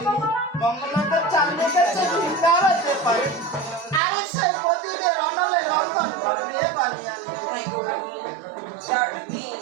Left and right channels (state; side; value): drops out; left; at 4.0 s